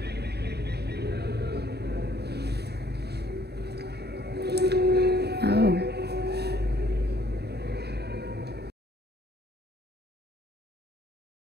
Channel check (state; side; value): late; left; 0.48 ms